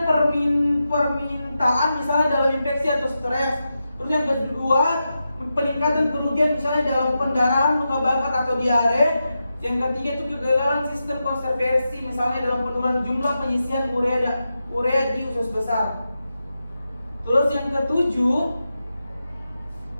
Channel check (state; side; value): inverted; both; correlation -0.89